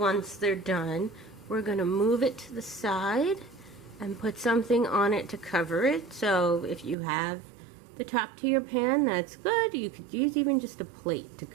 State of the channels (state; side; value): drops out; left; at 7.0 s